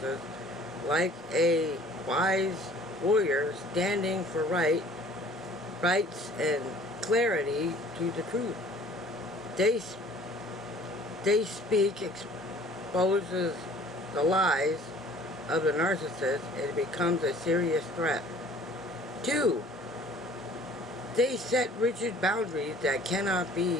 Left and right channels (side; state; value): both; normal; correlation 0.52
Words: like a wise warrior standing for rights and clarity to the truth. They speak, exposes the lies of the narcissist, and it becomes a serious threat. 2, they set rigid boundaries that cannot